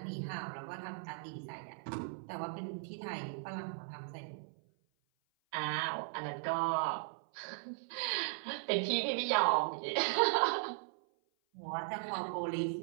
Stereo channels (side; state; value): left; silent; 53 dB below the other